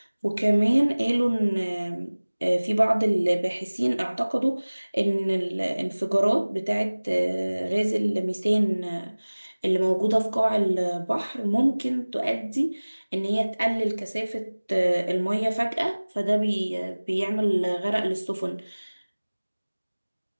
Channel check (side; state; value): both; inverted; correlation -1.00